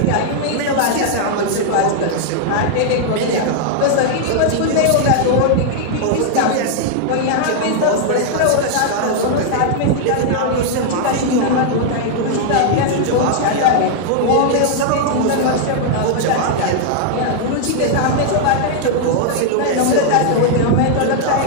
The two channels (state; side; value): different; both; correlation -0.01